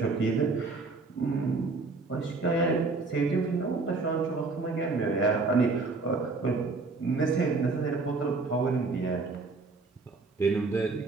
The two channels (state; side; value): quieter; left; 3.9 dB